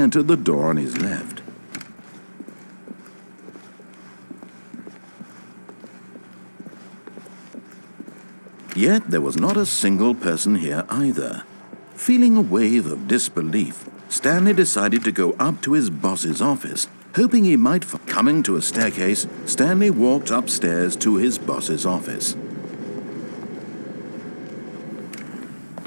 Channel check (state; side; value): inverted; both; correlation -1.00